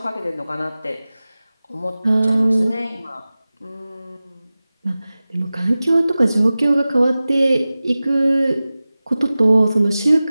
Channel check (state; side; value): inverted; both; correlation -0.97